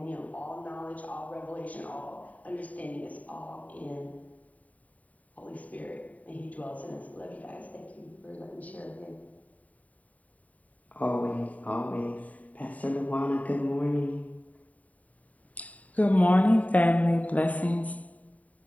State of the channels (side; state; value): right; late; 0.070 ms